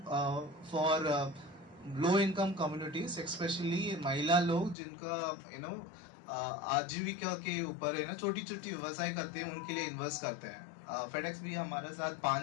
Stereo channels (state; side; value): drops out; right; at 4.8 s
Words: for low income communities, specially महिला लोग जिनका आजीविका के ऊपर है ना, छोटी छोटी व्यवसाय करते हैं, उनके लिए इन्वेस्ट करते हैं। फेडेक्स भी हमारे साथ